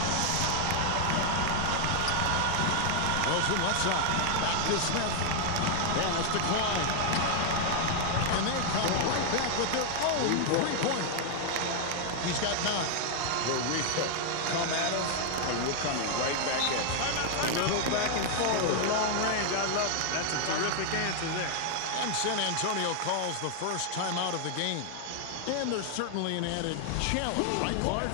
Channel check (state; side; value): different; both; correlation 0.00